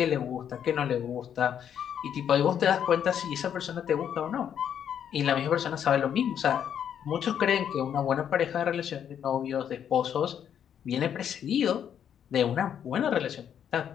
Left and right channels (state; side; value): quieter; right; 8.9 dB